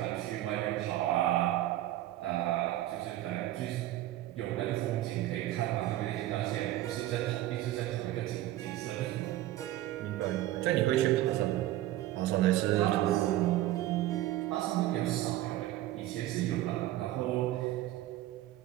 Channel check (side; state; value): left; quieter; 14.7 dB